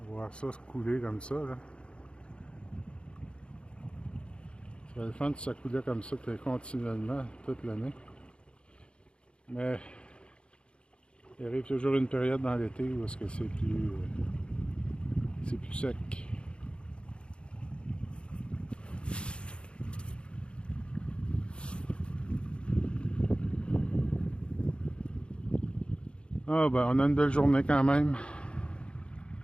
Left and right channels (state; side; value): late; right; 0.056 ms